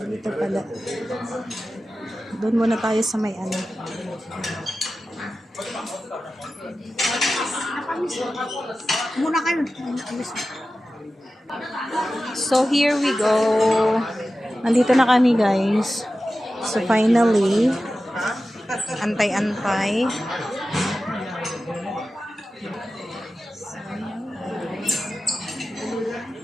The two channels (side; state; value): both; normal; correlation 0.94